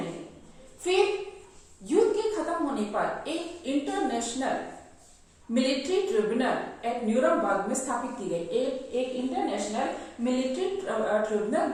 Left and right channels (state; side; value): identical; both; correlation 1.00